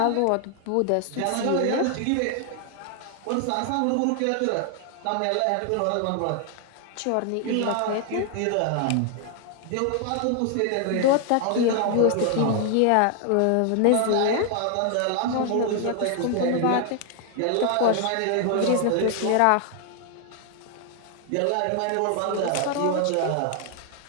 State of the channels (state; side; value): different; both; correlation 0.00